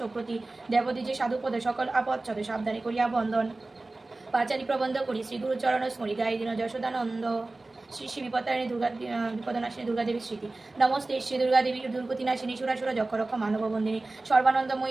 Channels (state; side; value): quieter; left; 3.1 dB